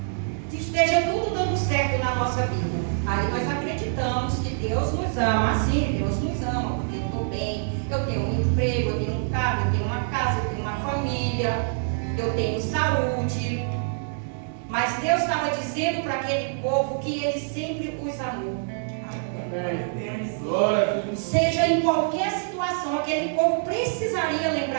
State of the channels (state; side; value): silent; left; 61 dB below the other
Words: se esteja tudo dando certo na nossa vida. Aí nós acreditamos que Deus nos ama. Assim, Deus nos ama, porque eu estou bem, eu tenho um emprego, eu tenho um carro, eu tenho uma casa, eu tenho uma família, eu tenho saúde. Mas Deus estava dizendo para aquele povo que Ele sempre os amou. Seja em qualquer situação, aquele povo precisaria